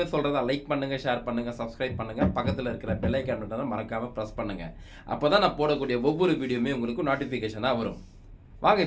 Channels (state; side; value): identical; both; correlation 1.00